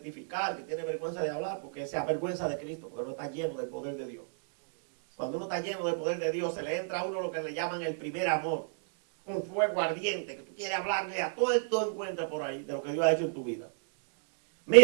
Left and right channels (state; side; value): silent; left; digital silence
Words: que tiene vergüenza de hablar, porque se avergüenza de Cristo, porque no está lleno del poder de Dios. Cuando uno está lleno del poder de Dios, se le entra a uno lo que le llaman el primer amor. Un fuego ardiente, que tú quieres hablarle a todo esto encuentra por ahí de lo que Dios ha hecho en tu vida.